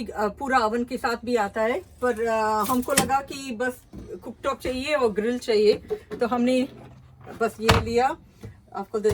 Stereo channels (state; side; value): identical; both; correlation 1.00